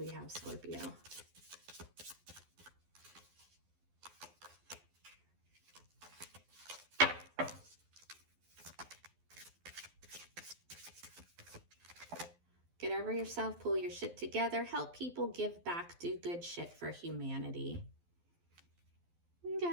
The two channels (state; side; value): late; left; 12 ms